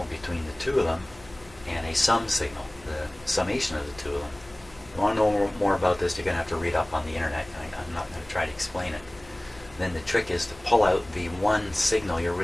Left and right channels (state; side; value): noise; left; hum, 23 dB below the sound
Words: between the two of them, and a sum signal, the summation of the two of them. If you want to know more about this, you're going to have to read up on the internet. I'm not going to try to explain it. Then the trick is to pull out the one signal you're